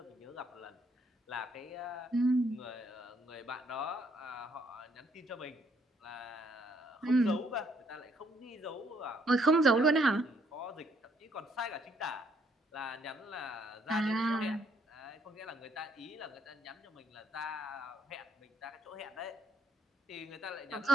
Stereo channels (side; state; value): both; normal; correlation 0.69